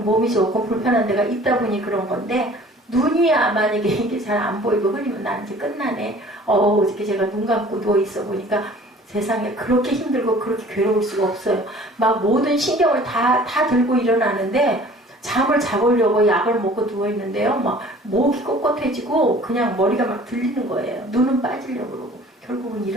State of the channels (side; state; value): both; normal; correlation 0.49